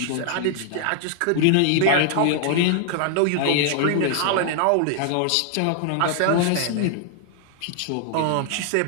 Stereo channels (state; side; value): different; both; correlation 0.00